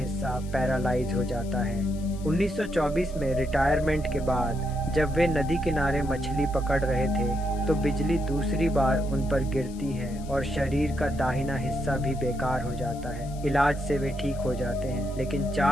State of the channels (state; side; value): noise; left; hiss, 21 dB below the sound